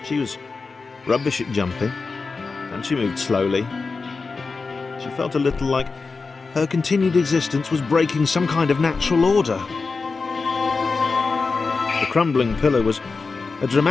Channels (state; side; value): quieter; right; 4.3 dB